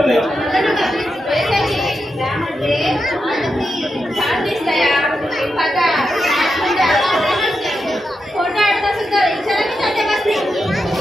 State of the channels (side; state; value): both; normal; correlation 0.87